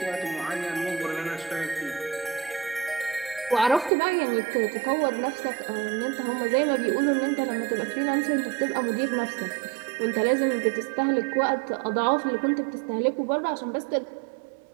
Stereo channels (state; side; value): drops out; left; at 3.9 s